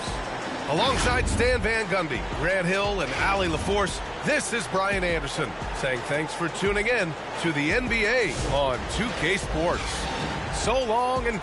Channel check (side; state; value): both; identical; correlation 1.00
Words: Alongside Stan Van Gundy, Grant Hill, and Allie LaForce, this is Brian Anderson saying thanks for tuning in to the NBA on 2K Sports. So long and